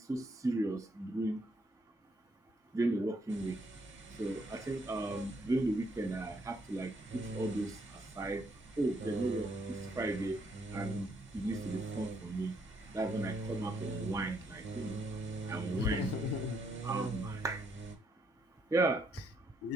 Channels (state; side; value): normal; both; correlation 0.73